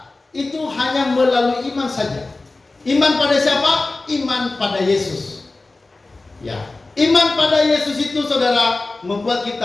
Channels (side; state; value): right; quieter; 3.3 dB